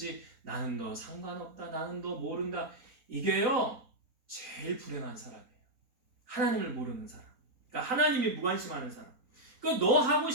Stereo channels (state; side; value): late; left; 4.2 ms